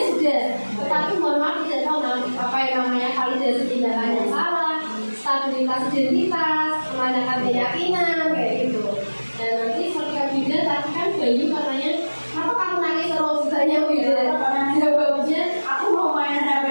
sudah. Tetapi mohon maaf tidak tahu apa yang namanya validasi tindakan yang salah, stabilitas identitas, menanyakan keyakinan kayak gitu. Dan nanti ketika Bu Ida tadi kan Bayu katanya, kenapa kamu nangis terus banyak Bu Ida? Jawabnya, Aku mau main HP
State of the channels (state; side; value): inverted; both; correlation -1.00